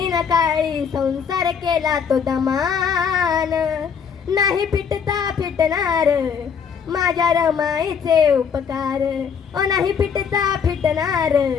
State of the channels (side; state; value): right; quieter; 6.9 dB